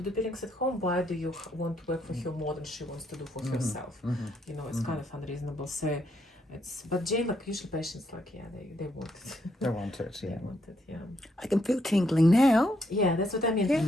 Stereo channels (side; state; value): both; normal; correlation 0.75